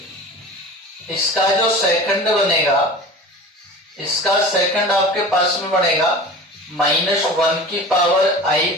इसका जो सेकंड बनेगा, इसका सेकंड आपके पास में बनेगा -1 की पावर आई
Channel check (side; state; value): both; normal; correlation 0.37